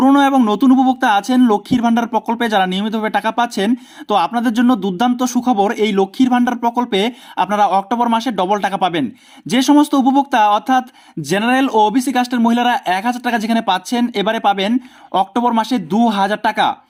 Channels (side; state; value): both; identical; correlation 1.00